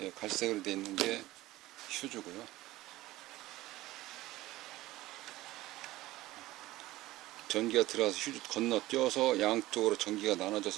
갈색으로 되어 있는 게 휴즈고요. 전기가 들어가서 휴즈 건너뛰어서 양쪽으로 전기가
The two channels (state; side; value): quieter; left; 17.1 dB